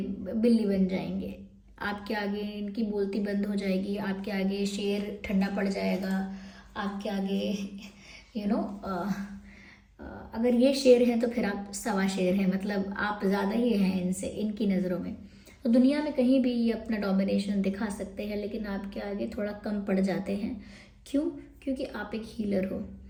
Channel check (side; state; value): both; identical; correlation 1.00